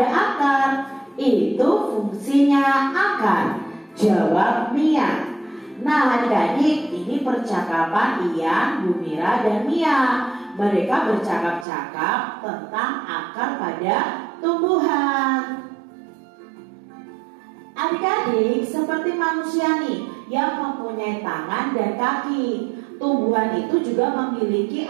akar, itu fungsinya akar, jawab Mia. Nah adik-adik, ini percakapan Ian, Bu Mira, dan Mia. Mereka bercakap-cakap tentang akar pada tumbuhan. Adik-adik, seperti manusia nih yang mempunyai tangan dan kaki, tumbuhan itu juga memiliki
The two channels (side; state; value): left; drops out; at 11.7 s